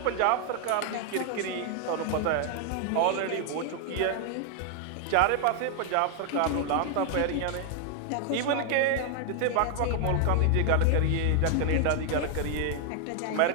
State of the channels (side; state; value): both; different; correlation 0.00